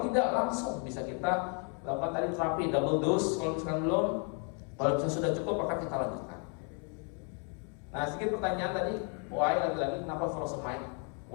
tidak langsung bisa kita lakukan tadi terapi double dose. Kalau misalkan belum, kalau misalkan sudah cukup maka kita lanjutkan. Nah sedikit pertanyaan tadi, why lagi-lagi kenapa furosemide?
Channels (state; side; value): quieter; right; 39.6 dB